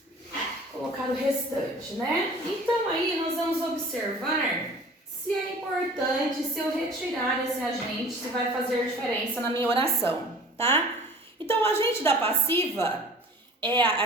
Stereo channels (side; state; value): both; normal; correlation 0.45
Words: colocar o restante, né? Então, aí nós vamos observar se é importante, se eu retirar esse agente, se vai fazer diferença na minha oração, tá? Então, o agente da passiva,